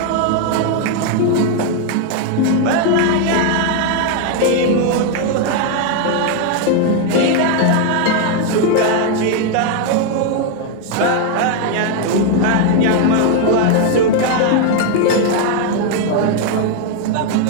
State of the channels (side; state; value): both; different; correlation 0.01